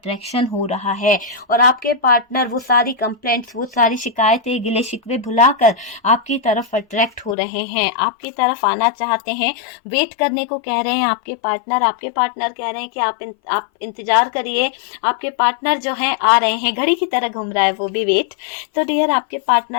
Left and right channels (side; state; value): right; drops out; at 7.4 s